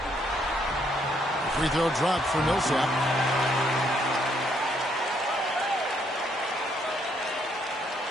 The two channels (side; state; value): both; normal; correlation 0.71